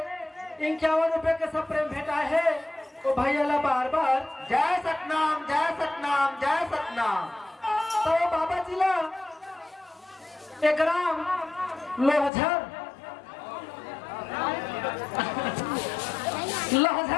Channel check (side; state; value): right; drops out; at 12.3 s